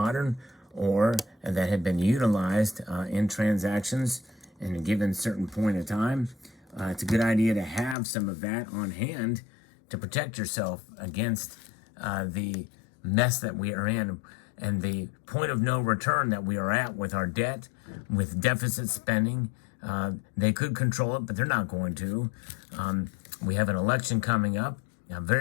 or that had been utilized in transactions in a given certain point of time, it's a good idea to have some of that on hand to protect yourself against the mess that we are in and the point of no return that we are at with our debt, with deficit spending. They could control it, but they're not going to. We have an election coming up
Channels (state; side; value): drops out; right; at 8.0 s